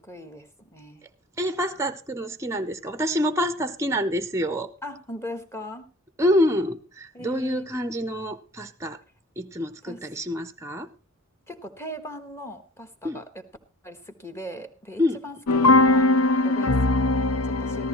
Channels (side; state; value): both; normal; correlation 0.39